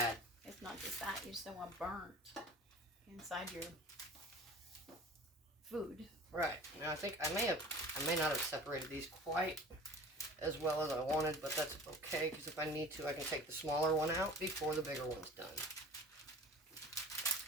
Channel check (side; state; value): both; normal; correlation 0.42